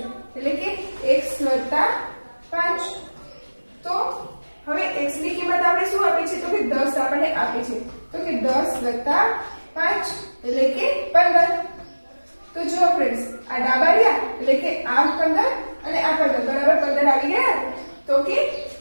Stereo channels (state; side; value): inverted; both; correlation -1.00